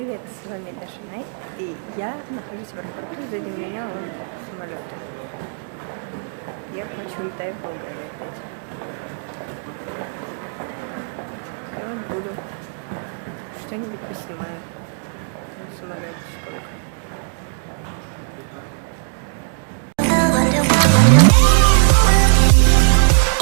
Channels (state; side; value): silent; left; 66 dB below the other